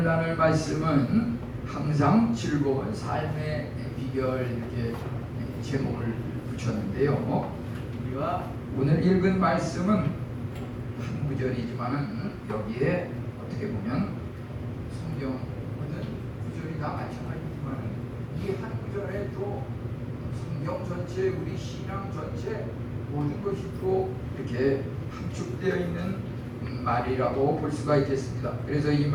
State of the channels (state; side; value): identical; both; correlation 1.00